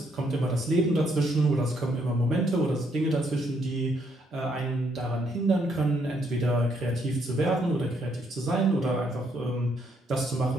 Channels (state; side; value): normal; both; correlation 0.72